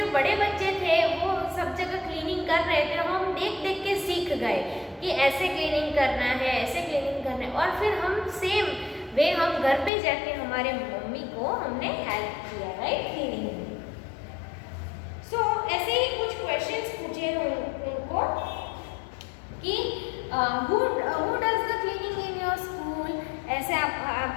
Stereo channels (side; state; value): right; drops out; at 9.9 s